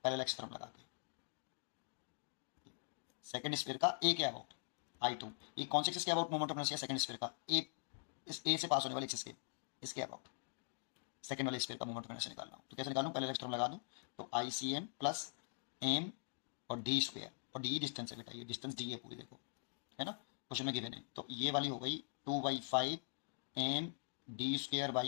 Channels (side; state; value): right; silent; digital silence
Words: पैरेलल थ्योरम लगा के, सेकंड स्फीयर का ए के अबाउट I2, ये कौन से एक्सिस के about moment of inertia, second sphere का ए, इस ए से पास होने वाले एक्सिस के, इसके अबाउट सेकंड वाले स्फीयर का मोमेंट ऑफ इनर्शिया निकालना हो तो कैसे निकालूं, पैरेलल थ्योरम लगा दूं तो ICM प्लस एम और d², और d डिस्टेंस है बेटा, ये डिस्टेंस दी है पूरी, देखो है ना क्वेश्चन में गिवन है। तो ये वाली हो गई 2/5 M